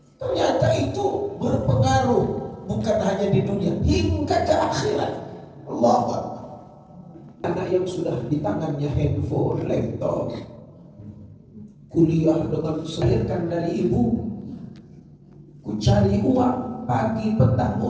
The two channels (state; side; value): identical; both; correlation 1.00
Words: Ternyata itu berpengaruh bukan hanya di dunia, hingga ke akhirat. Allahu Akbar. Anak yang sudah di tangannya handphone, laptop, kuliah dengan selirkan dari ibu, ku cari uang pagi petang